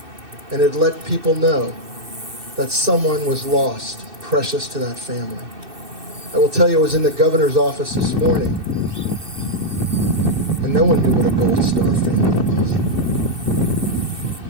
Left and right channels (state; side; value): late; left; 2.6 ms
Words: and it let people know that someone was lost, precious to that family. I will tell you, I was in the governor's office this morning, and no one knew what a Gold Star family was.